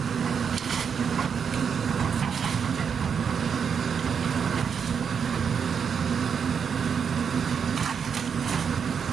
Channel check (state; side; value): quieter; left; 6.9 dB